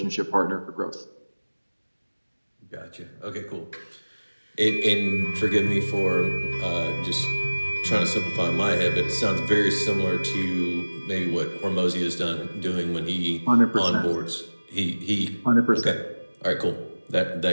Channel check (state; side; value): inverted; both; correlation -1.00